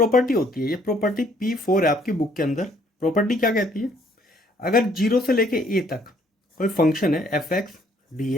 होती है, ये प्रॉपर्टी P4 है आपकी बुक के अंदर। प्रॉपर्टी क्या कहती है, अगर 0 से लेके a तक कोई फंक्शन है एफ एक्स डी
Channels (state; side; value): normal; both; correlation 0.64